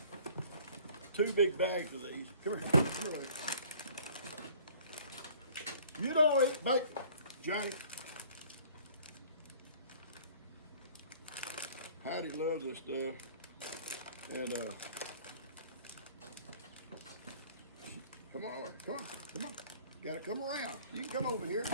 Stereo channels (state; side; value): inverted; both; correlation -0.52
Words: 2 big bags of these. Come here. Come here. You don't eat bacon, Johnny. Heidi loves this stuff. And come on, come on, come on. You gotta come around. You can come over here.